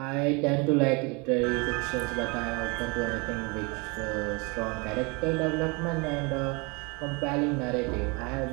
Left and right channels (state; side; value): quieter; left; 29.7 dB